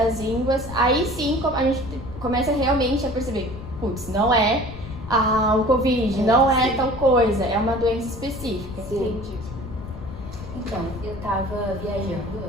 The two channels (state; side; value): noise; left; rumble, 12 dB below the sound